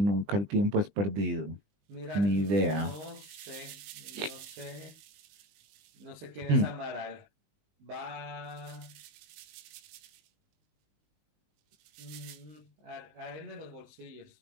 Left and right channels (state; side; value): late; left; 20 ms